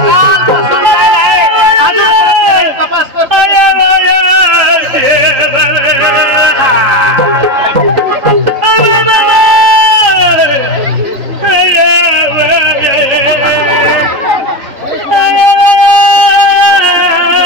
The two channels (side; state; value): left; late; 3.8 ms